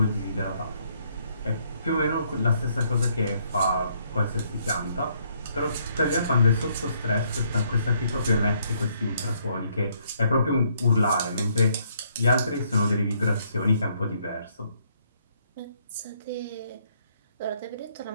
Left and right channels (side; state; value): both; inverted; correlation -0.69